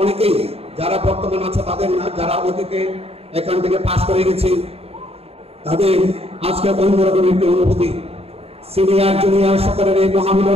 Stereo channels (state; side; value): late; left; 0.29 ms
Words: অনেকেই যারা বর্তমান আছে তাদের না, যারা অতীতে এখান থেকে পাশ করে গেছি, তাদের আজকে অন্যরকম একটি অনুভূতি। সিনিয়র জুনিয়র সকলের এই